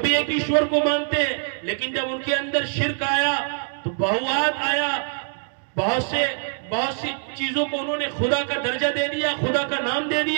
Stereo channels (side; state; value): left; silent; digital silence